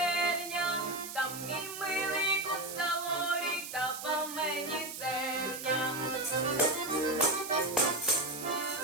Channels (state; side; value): noise; right; hiss, 9 dB below the sound